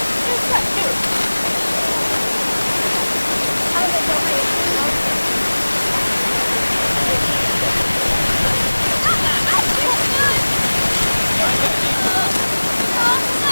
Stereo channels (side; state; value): both; inverted; correlation -1.00